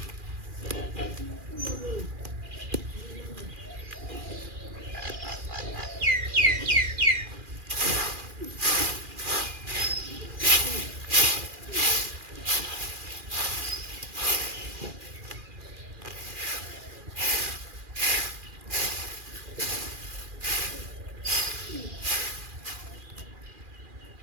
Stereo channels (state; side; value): late; left; 2.4 ms